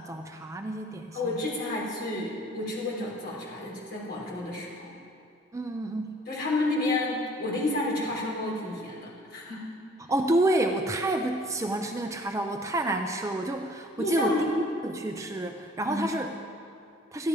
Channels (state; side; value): normal; both; correlation 0.54